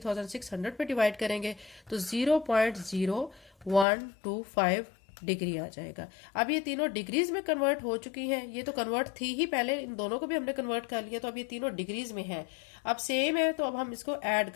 पे डिवाइड करेंगे तो 0.0125 डिग्री आ जाएगा। अब ये तीनों डिग्रीज में कन्वर्ट हो चुकी हैं। ये तो कन्वर्ट थी ही पहले, इन दोनों को भी हमने कन्वर्ट कर लिया, तो अब ये तीनों डिग्रीज में है। अब सेम है, तो अब हम इसको ऐड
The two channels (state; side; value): drops out; right; at 3.9 s